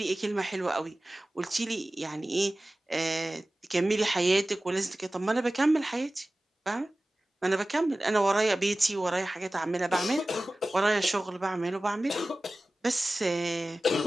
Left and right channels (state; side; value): normal; both; correlation 0.96